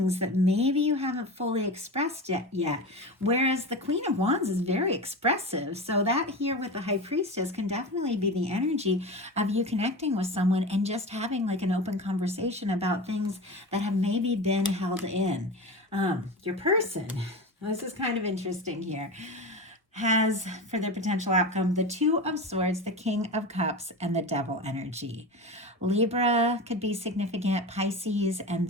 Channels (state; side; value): normal; both; correlation 0.26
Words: that maybe you haven't fully expressed yet. Whereas the Queen of Wands is very expressive. So that here with the High Priestess can definitely be the energy of you connecting with someone and just having like an open conversation about things that have maybe been held in. Your person, this is kind of interesting here, has for their potential outcome the Two of Swords, the King of Cups, and the Devil energy. Libra could be significant, Pisces, and